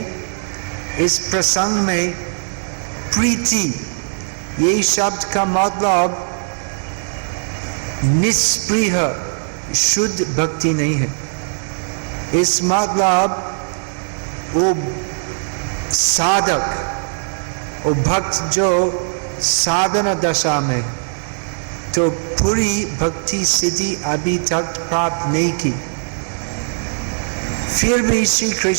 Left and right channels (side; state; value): left; silent; 58 dB below the other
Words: इस प्रसंग में प्रीति, ये शब्द का मतलब निष्प्रिय शुद्ध भक्ति नहीं है। इस मतलब वो साधक, वो भक्त जो साधना दशा में, तो पूरी भक्ति सिद्धि अभी तक प्राप्त नहीं की, फिर भी श्री